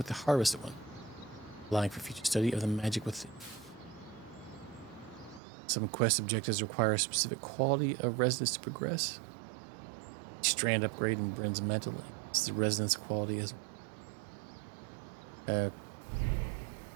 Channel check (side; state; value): left; drops out; at 5.4 s